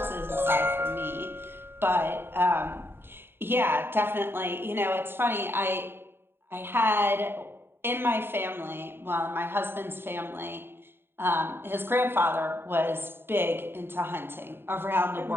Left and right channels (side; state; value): left; late; 0.11 ms